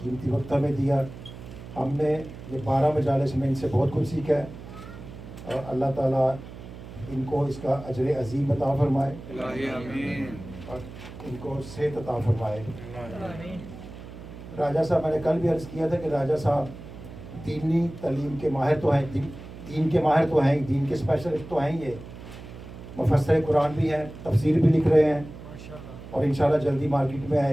قیمتی وقت ہمیں دیا. ہم نے یہ 12 مجالس میں ان سے بہت کچھ سیکھا ہے، اور اللہ تعالیٰ ان کو اس کا اجر عظیم عطا فرمائے اور ان کو صحت عطا فرمائے. راجہ صاحب، میں نے کل بھی عرض کیا تھا کہ راجہ صاحب دینی تعلیم کے ماہر تو ہیں، دین کے ماہر تو ہیں، دین کے اسپیشلسٹ تو ہیں. یہ مفسر قرآن بھی ہیں، تفسیر بھی لکھ رہے ہیں اور انشاءاللہ جلدی مارکیٹ میں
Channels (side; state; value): right; noise; hum, 14 dB below the sound